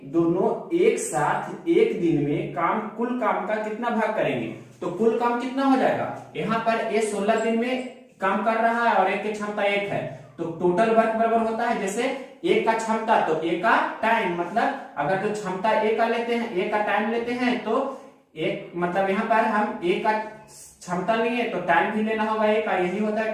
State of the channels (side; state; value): both; identical; correlation 1.00